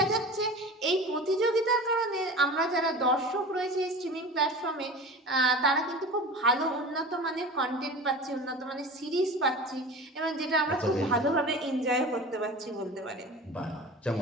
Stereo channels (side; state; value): both; normal; correlation 0.35